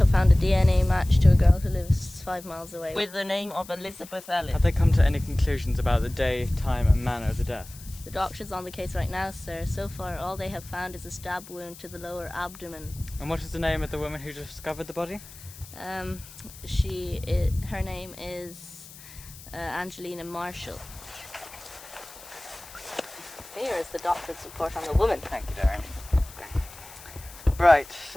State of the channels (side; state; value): left; noise; hiss, 18 dB below the sound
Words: found a DNA match to a girl who lives 5 miles away with the name of Elizabeth Ellis. Have they come to any conclusions about the day, time and manner of the death? The doctor's on the case right now, sir. So far, all they have found is a stab wound to the lower abdomen. And what is the name of the woman who discovered the body? Her name is Angelina Marshall. Here is the doctor's report on the woman. Thank you, Darren. Right,